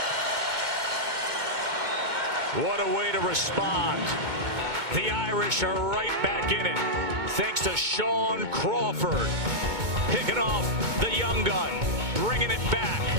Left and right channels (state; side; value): late; left; 2.2 ms